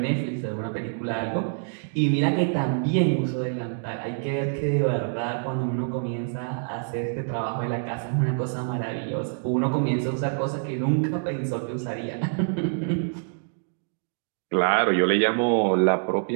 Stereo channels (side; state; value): left; silent; digital silence